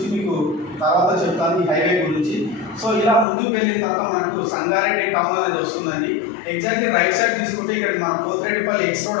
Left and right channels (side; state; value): right; drops out; at 3.2 s